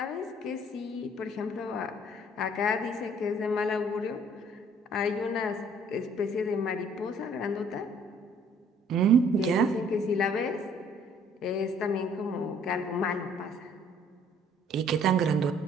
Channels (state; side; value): normal; both; correlation 0.59